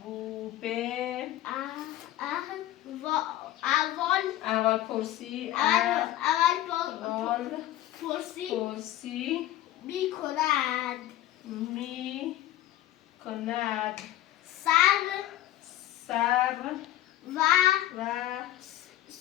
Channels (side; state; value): right; quieter; 14.1 dB